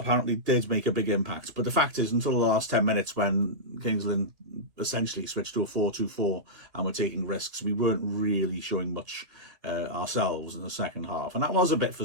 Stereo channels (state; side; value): late; left; 3.2 ms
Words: did make a big impact. But the fact is, until the last 10 minutes when Kings Lynn essentially switched to a 4-2-4 and were taking risks, we weren't really showing much ourselves in the second half. And that was a bit